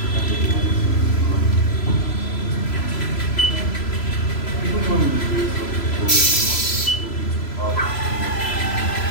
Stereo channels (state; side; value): late; right; 3.0 ms